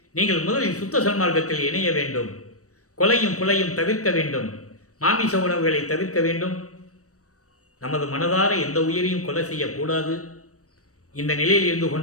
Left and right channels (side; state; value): right; late; 0.66 ms